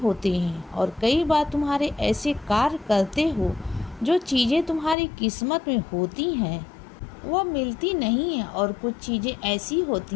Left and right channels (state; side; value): drops out; right; at 5.0 s